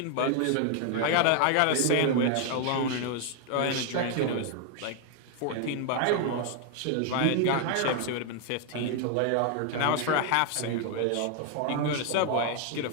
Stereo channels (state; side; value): different; both; correlation 0.00